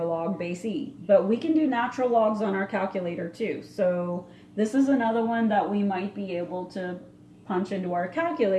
log base e. But we can do natural logs on our calculator too. So this is another one that we might be able to punch into our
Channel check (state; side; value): identical; both; correlation 1.00